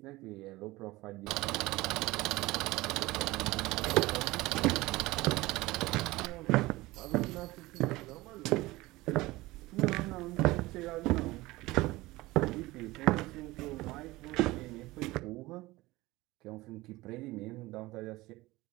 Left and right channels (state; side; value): quieter; left; 19.7 dB